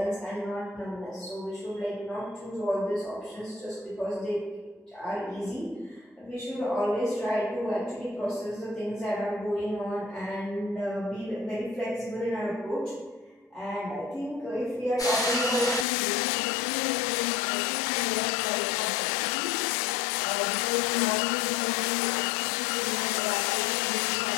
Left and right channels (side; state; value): right; drops out; at 15.9 s